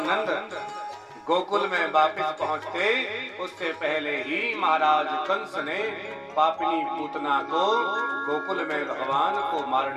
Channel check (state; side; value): identical; both; correlation 1.00